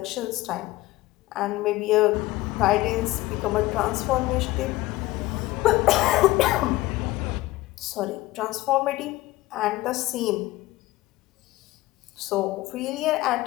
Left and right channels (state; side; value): quieter; right; 18.3 dB